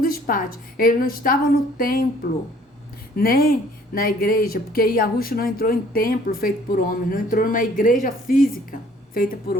pátios. Ele não estava no templo, nem na igreja, porque Yahushua não entrou em templo feito por homens, não entrou numa igreja física feita por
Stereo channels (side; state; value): both; normal; correlation 0.57